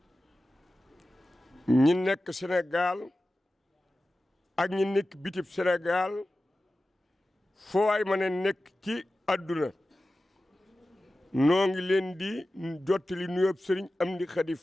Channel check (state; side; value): normal; both; correlation 0.95